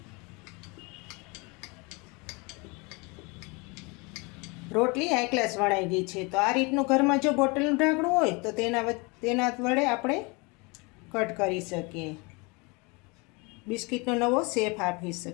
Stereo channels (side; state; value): right; quieter; 28.4 dB